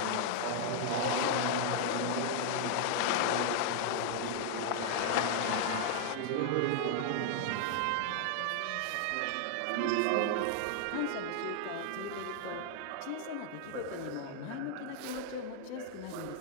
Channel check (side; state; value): both; different; correlation 0.00